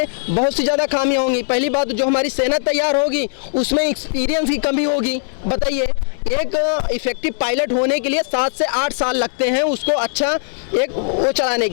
बहुत सी ज़्यादा खामियां होंगी। पहली बात, जो हमारी सेना तैयार होगी उसमें एक्सपीरियंस की कमी होगी। बताइए, एक इफेक्टिव पायलट होने के लिए 7 से 8 साल लगते हैं उसको अच्छा एक वो चलाने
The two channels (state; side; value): silent; right; digital silence